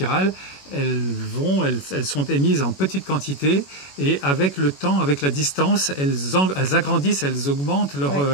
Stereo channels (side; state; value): right; late; 21 ms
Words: elles sont émises en petite quantité et avec le temps, avec la distance, elles agrandissent, elles augmentent